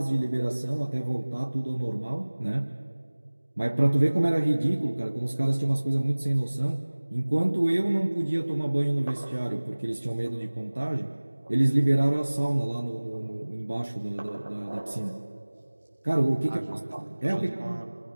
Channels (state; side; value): inverted; both; correlation -1.00